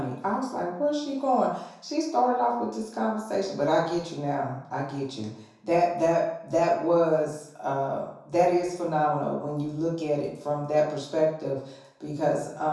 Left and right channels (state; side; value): identical; both; correlation 1.00